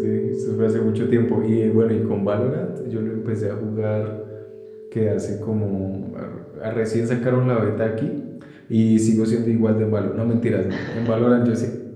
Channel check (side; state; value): both; identical; correlation 1.00